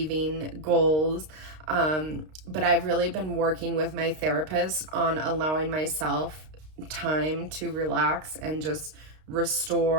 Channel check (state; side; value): late; left; 32 ms